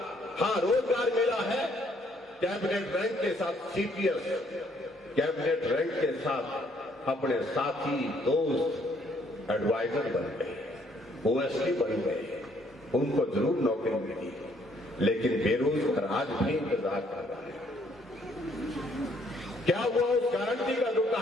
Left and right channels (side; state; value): both; normal; correlation 0.66